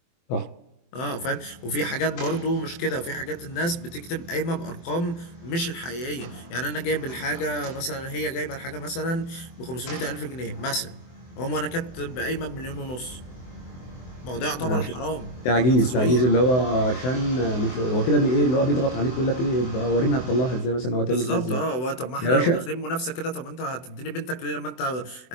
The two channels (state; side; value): late; right; 24 ms